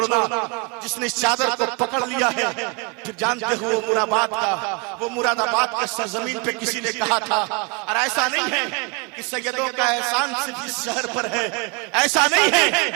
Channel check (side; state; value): left; quieter; 31.0 dB